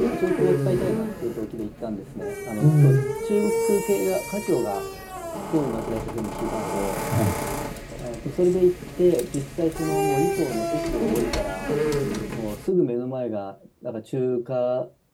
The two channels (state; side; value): identical; both; correlation 1.00